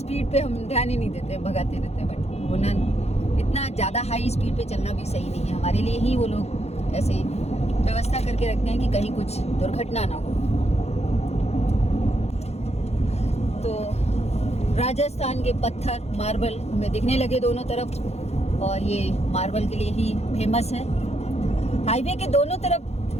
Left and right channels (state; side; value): late; right; 0.31 ms